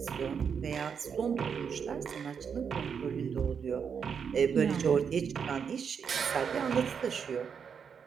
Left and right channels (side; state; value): left; quieter; 6.8 dB